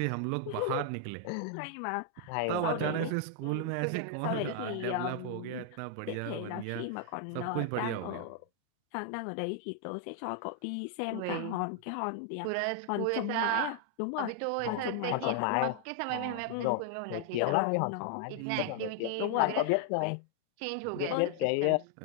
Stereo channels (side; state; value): both; different; correlation 0.00